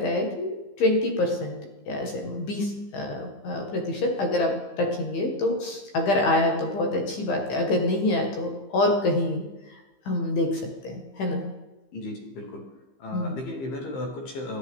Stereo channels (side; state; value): right; late; 15 ms